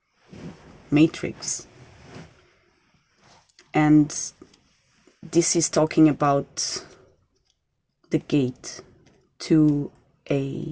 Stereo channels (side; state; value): both; identical; correlation 1.00